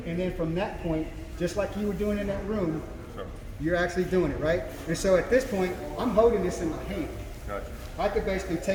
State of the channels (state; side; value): identical; both; correlation 1.00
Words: and then from that point, just like you were doing in that room, you're actually doing it, right? And so at this point, I'm holding this in my hand. Gotcha. I could basically